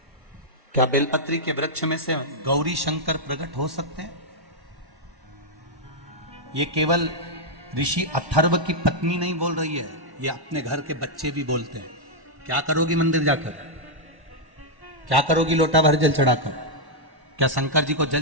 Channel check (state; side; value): late; left; 1.1 ms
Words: क्या बेलपत्री के वृक्ष में से गौरी शंकर प्रकट हो सकते हैं? ये केवल ऋषि अथर्व की पत्नी नहीं बोल रही है, ये अपने घर के बच्चे भी बोलते हैं। क्या करोगी मंदिर जाकर? क्या करोगी लोटा भर जल चढ़ाकर? क्या शंकर जी को जल